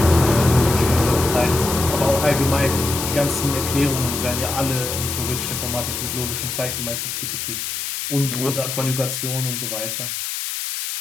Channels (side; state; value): left; noise; hiss, 4 dB below the sound